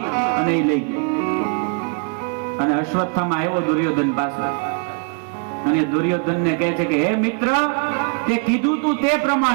અને એ લઈ ગયો. અને અશ્વત્થામા આવ્યો દુર્યોધન પાસે અને દુર્યોધનને કહે છે કે હે મિત્ર, તે કીધું તું તે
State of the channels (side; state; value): left; quieter; 37.8 dB